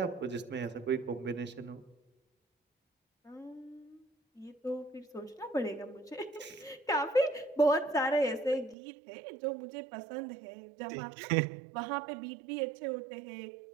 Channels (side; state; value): left; drops out; at 8.8 s